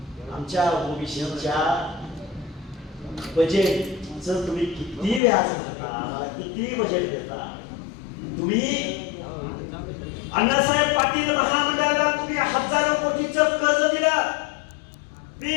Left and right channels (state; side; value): drops out; right; at 5.2 s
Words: आमच्या ओबीसीच्या बजेटचं तुम्ही किती व्याज भरता? आम्हाला किती बजेट देता? तुम्ही अण्णासाहेब पाटील महामंडळाला तुम्ही हजारो कोटीचं कर्ज दिलं,